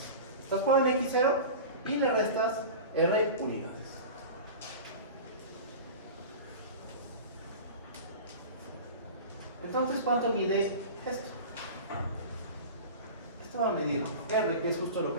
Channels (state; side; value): inverted; both; correlation -0.33